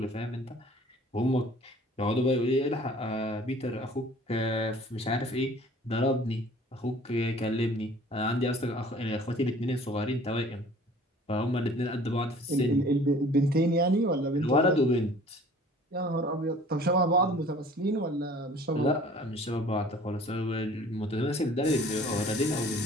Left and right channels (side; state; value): both; normal; correlation 0.50